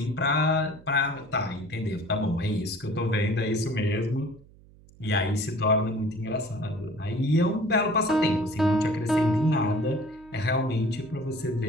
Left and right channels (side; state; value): right; noise; hum, 25 dB below the sound